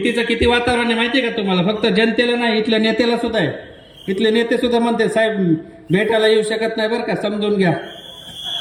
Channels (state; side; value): identical; both; correlation 1.00